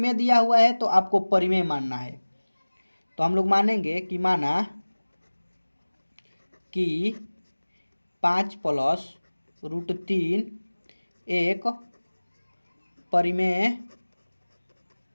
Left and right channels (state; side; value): inverted; both; correlation -1.00